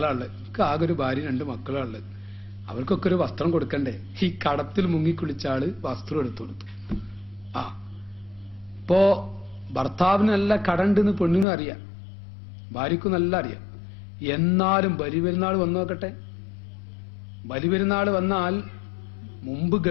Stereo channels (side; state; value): right; drops out; at 11.5 s